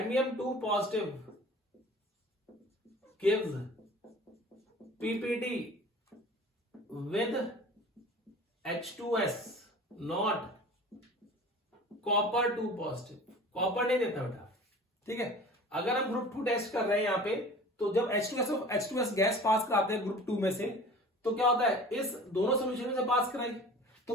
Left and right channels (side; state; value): both; normal; correlation 0.42